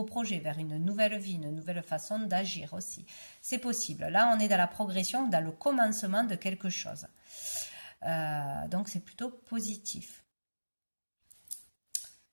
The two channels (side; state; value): both; inverted; correlation -1.00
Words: projet, vers une nouvelle vie, une nouvelle façon d'agir aussi. C'est possible. Là, on est dans la progression, dans le commencement de quelque chose. Donc, c'est plutôt positif.